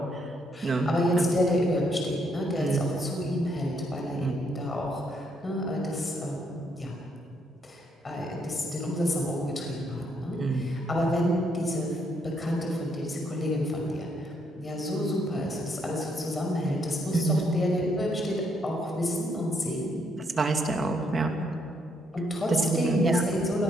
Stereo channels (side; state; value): both; normal; correlation 0.73